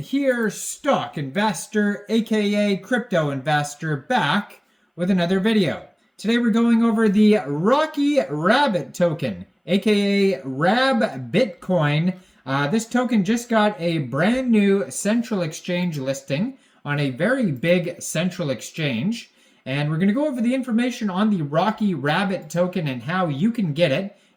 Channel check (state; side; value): identical; both; correlation 1.00